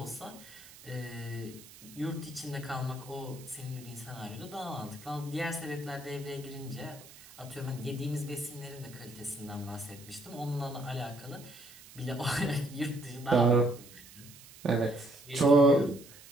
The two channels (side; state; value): right; noise; hiss, 19 dB below the sound